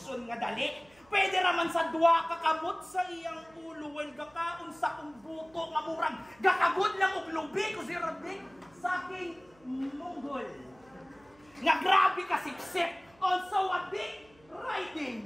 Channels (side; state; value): right; noise; hum, 29 dB below the sound